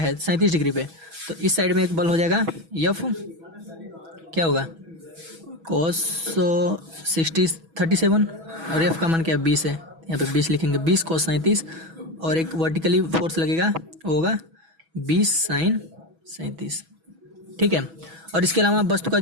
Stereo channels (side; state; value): left; late; 6.1 ms